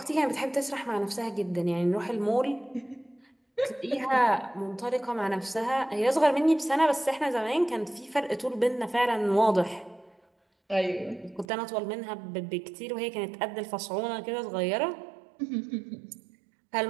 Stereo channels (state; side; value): drops out; left; at 11.5 s